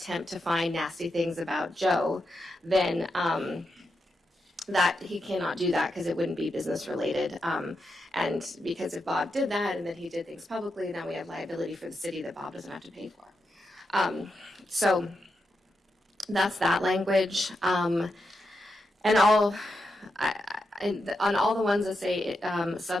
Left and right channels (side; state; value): both; normal; correlation 0.86